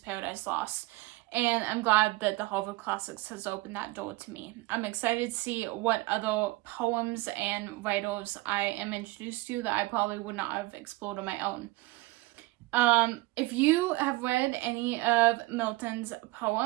Paradise Lost. And I'm glad that the Harvard Classics has opened that door to me. I'm excited to see what other poems and writers I am introduced to that I probably would not have explored on my own. If you have read any of Milton's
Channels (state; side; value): quieter; left; 20.5 dB